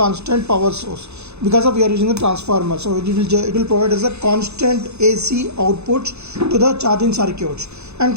power source because of we are using the transformer. So it will provide as a constant AC output to the charging circuits. And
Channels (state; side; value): late; left; 0.81 ms